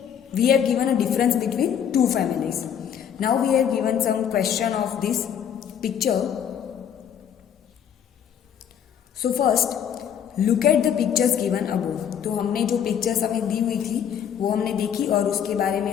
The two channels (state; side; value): quieter; right; 8.6 dB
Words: we have given a difference between two families. Now we have given some question of this picture. So first look at the pictures given above. तो हमने जो पिक्चर्स हमें दी हुई थी वो हमने देखी और उसके बारे